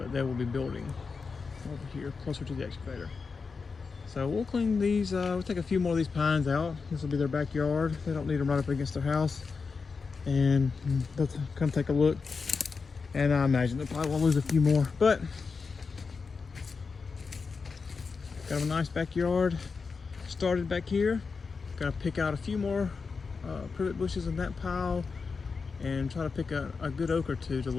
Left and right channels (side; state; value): right; quieter; 4.9 dB